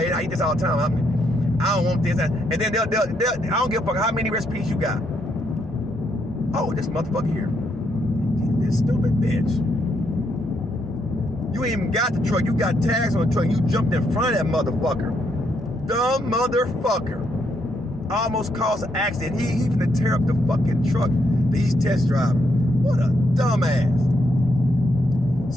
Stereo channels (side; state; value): both; normal; correlation 0.76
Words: I eat this all the time. I don't want this. And then they'll I don't give a fuck how many recipes you got. Oh, this motherfucker here. This stupid bitch. You ain't even got the truck. You got tags on the truck. You jumped in front of that motherfucker. Dumb motherfucker. Almost caused an accident. He finna tear up the fucking truck that he's test driving. What a dumbass.